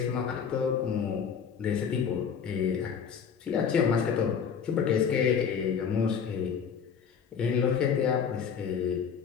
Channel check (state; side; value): quieter; right; 7.0 dB